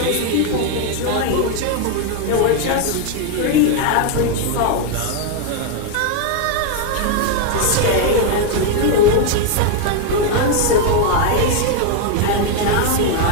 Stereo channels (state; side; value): different; both; correlation 0.01